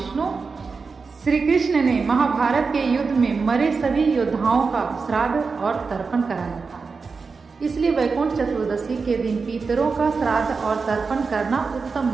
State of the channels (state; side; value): quieter; left; 4.7 dB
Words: श्री कृष्ण ने महाभारत के युद्ध में मरे सभी योद्धाओं का श्राद्ध और तर्पण कराया था। इसलिए वैकुंठ चतुर्दशी के दिन पितरों का श्राद्ध और तर्पण करना उत्तम